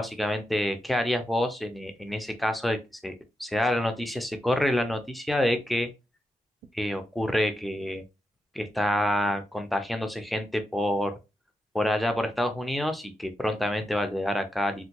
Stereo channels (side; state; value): both; normal; correlation 0.87